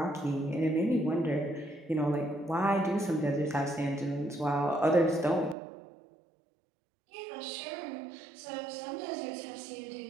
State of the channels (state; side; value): drops out; left; at 5.6 s